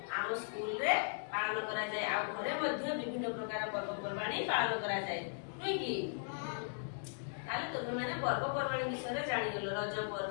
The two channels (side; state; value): right; silent; digital silence